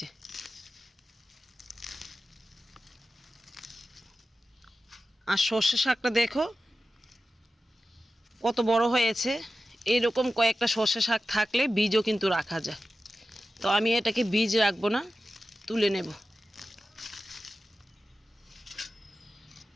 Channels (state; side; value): normal; both; correlation 0.93